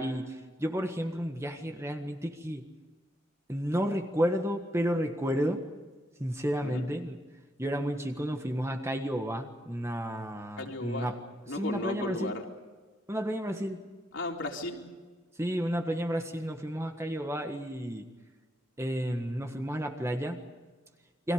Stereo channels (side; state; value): both; normal; correlation 0.79